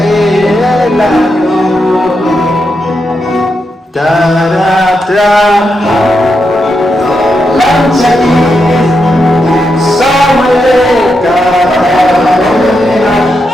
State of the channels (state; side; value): normal; both; correlation 0.85